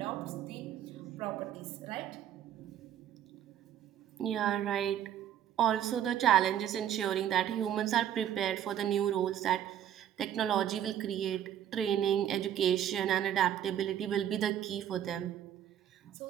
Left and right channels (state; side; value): quieter; left; 10.5 dB